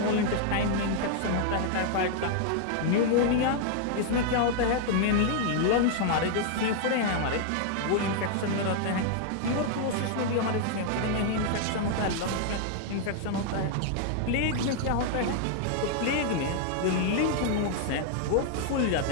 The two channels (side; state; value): both; different; correlation 0.00